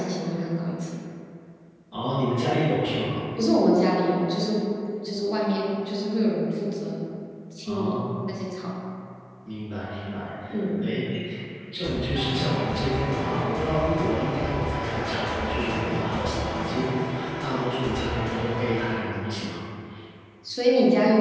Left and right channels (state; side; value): identical; both; correlation 1.00